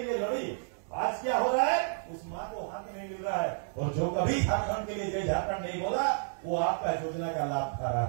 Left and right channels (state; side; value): silent; left; 57 dB below the other